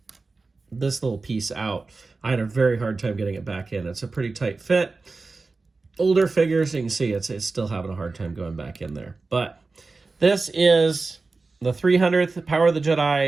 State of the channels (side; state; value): left; quieter; 3.8 dB